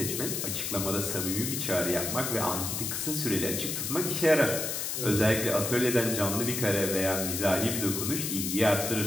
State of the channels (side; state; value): left; noise; hiss, 2 dB below the sound